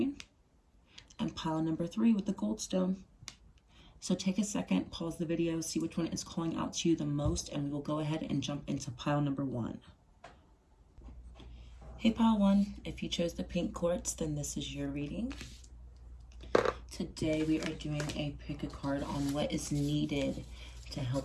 and pile number 3 with the goldstone. So take a second, pause the video, see which one is calling out to you the most, and we will go ahead and jump into pile number 1. Hey pile 1, if you chose the pink quartz, then this is your reading. Today we are doing a pick a card on what is needed to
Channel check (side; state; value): both; identical; correlation 1.00